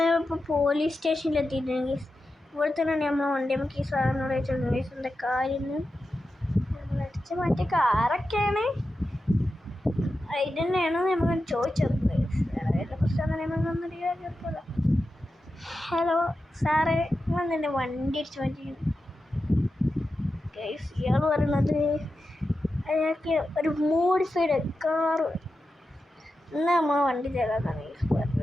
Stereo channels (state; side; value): normal; both; correlation 0.91